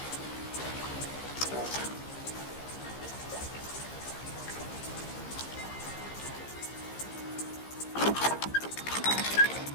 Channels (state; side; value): late; right; 15 ms